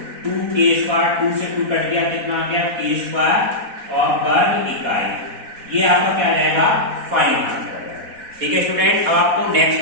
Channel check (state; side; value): late; left; 4.1 ms